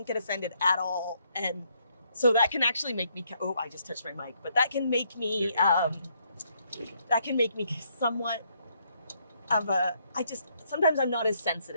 get offended at all. And so that can actually make me, I just touched my mic, but that can make me somewhat of sometimes I'm not as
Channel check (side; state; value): both; inverted; correlation -0.72